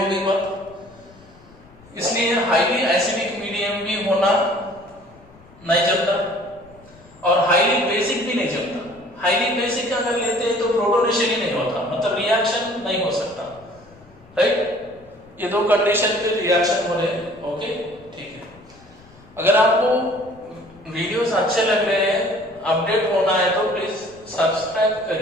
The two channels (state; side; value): noise; left; rumble, 26 dB below the sound